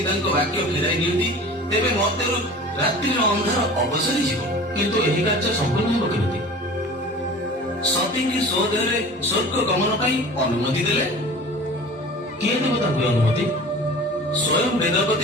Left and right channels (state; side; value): normal; both; correlation 0.41